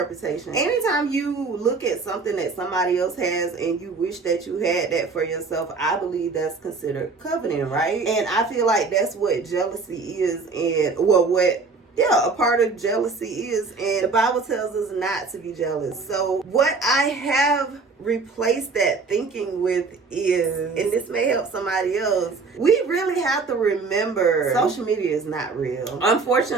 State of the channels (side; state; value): left; quieter; 4.3 dB